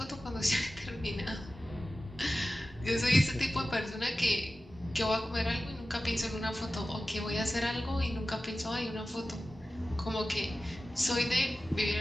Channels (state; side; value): normal; both; correlation 0.95